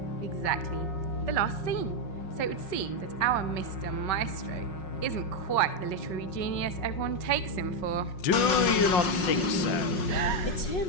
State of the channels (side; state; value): right; late; 5.5 ms